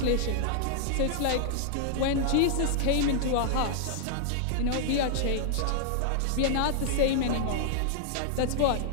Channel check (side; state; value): both; different; correlation -0.01